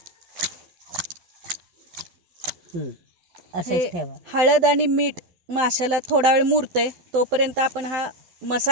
असंच ठेवा। हळद आणि मीठ माशाला थोडा वेळ मुरतंय तोपर्यंत आपण हा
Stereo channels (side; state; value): left; late; 12 ms